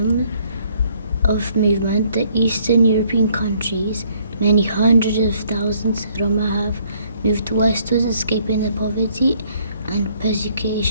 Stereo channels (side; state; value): both; inverted; correlation -0.65